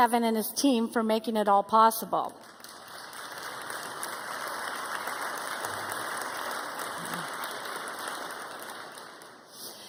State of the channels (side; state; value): both; identical; correlation 1.00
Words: and his team for making it all possible.